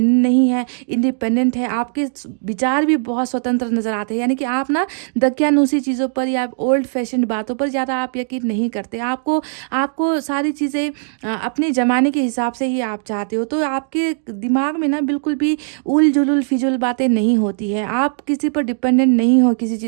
नहीं है, इंडिपेंडेंट है। आपके विचार भी बहुत स्वतंत्र नज़र आते हैं, यानी कि आप ना दकियानूसी चीज़ों पर या ओल्ड फैशन बातों पर ज़्यादा आप यकीन नहीं करते। आपको सारी चीज़ें अपने ज़माने के हिसाब से ही आप चाहते हो। तो आपके दिमाग में ना बिल्कुल भी उल जुलुल फिजुल बातें नहीं होती है। आप किसी पर डिपेंडेंट नहीं हो किसी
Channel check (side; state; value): left; silent; digital silence